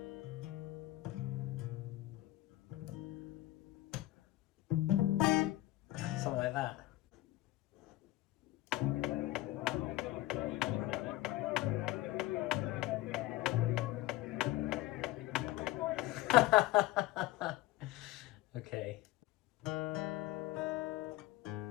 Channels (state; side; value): quieter; right; 16.8 dB